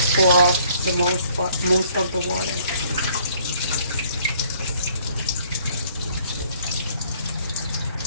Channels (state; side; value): inverted; both; correlation -0.61